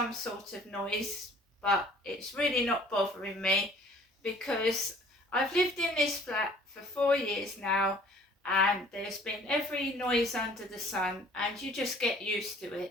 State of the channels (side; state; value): both; normal; correlation 0.53